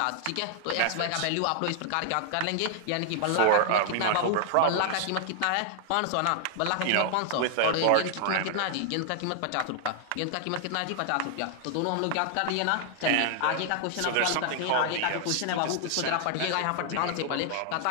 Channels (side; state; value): both; different; correlation 0.00